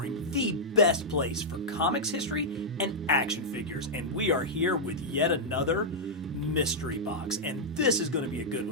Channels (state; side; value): normal; both; correlation -0.07